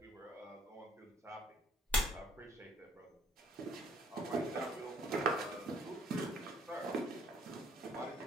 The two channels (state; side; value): normal; both; correlation 0.61